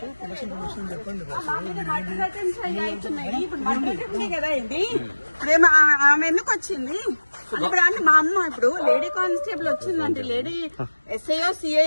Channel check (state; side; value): inverted; both; correlation -1.00